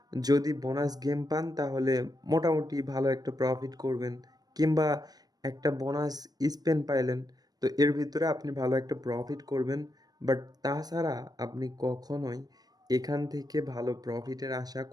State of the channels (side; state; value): left; late; 0.19 ms